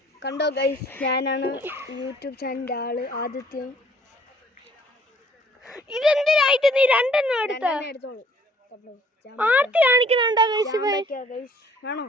കണ്ടോ ഗൈസ്, ഞാനാണ് യൂട്യൂബ് ചാനലിൻ്റെ ആള് ആദിത്യം. ഇതെന്തിനായിട്ട് നീ രണ്ടെണ്ണം എടുത്തോളൂ. ആർത്തി കാണിക്കുന്നുണ്ടോ ഗൈസ്? ആണോ?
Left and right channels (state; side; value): normal; both; correlation 0.58